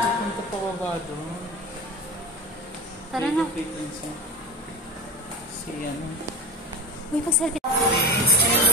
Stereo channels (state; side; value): normal; both; correlation 0.27